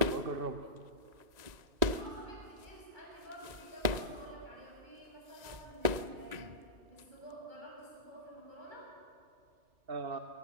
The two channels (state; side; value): late; left; 1.9 ms